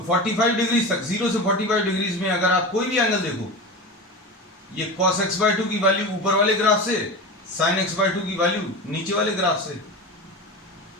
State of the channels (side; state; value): both; normal; correlation 0.27